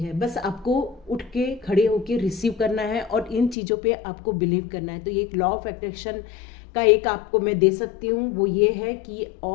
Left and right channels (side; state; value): right; drops out; at 3.6 s